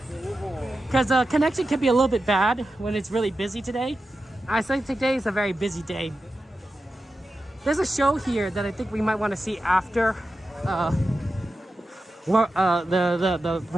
Because connection can be a little bit bad when it's really busy today. I think today is a very busy day. There's a show here that I think we might want to see after the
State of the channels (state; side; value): normal; both; correlation 0.91